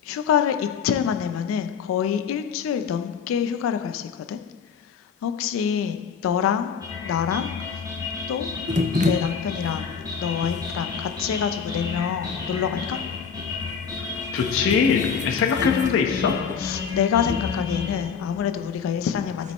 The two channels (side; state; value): right; quieter; 6.6 dB